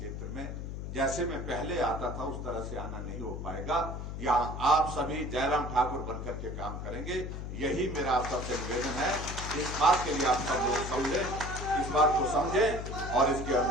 में जैसे मैं पहले आता था उस तरह से आना नहीं हो पाएगा। यहाँ आप सभी जयराम ठाकुर बनकर के काम करेंगे, यही मेरा आप सबसे निवेदन है। इस बात के लिए आप सब लोग समझें, इस बात को समझें और इसके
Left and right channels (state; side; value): noise; left; hum, 6 dB below the sound